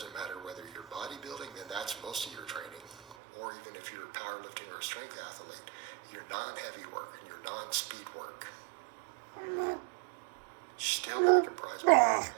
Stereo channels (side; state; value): left; drops out; at 3.2 s